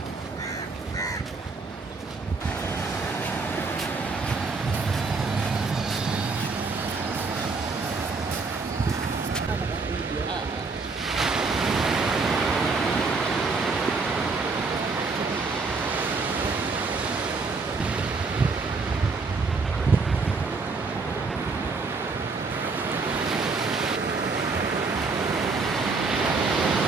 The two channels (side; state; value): left; quieter; 4.2 dB